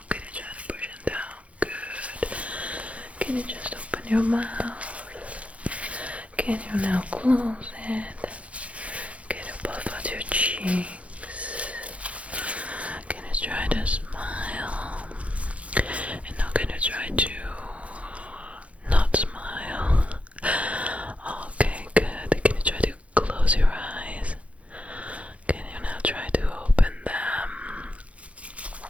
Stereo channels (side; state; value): left; late; 0.064 ms